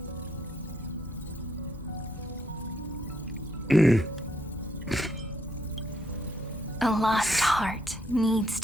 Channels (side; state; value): both; normal; correlation 0.74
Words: A lost heart needs